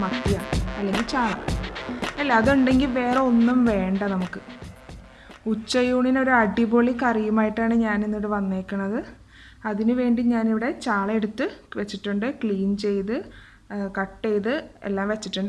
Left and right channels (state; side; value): identical; both; correlation 1.00